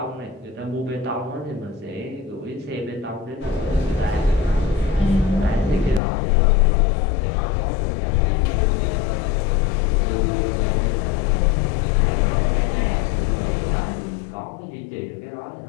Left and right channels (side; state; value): right; drops out; at 6.0 s